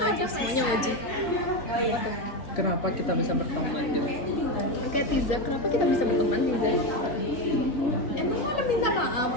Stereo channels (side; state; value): right; late; 3.4 ms